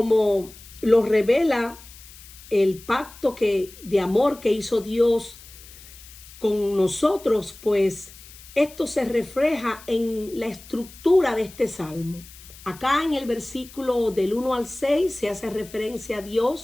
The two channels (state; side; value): noise; left; hiss, 20 dB below the sound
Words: lo revela el pacto de amor que hizo Dios con nosotros, pues esto se refleja en la estructura de este salmo. Acá en el versículo del 1 al 6 se hace referencia a